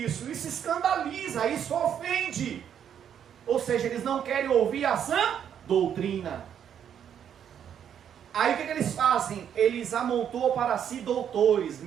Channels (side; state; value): left; quieter; 8.9 dB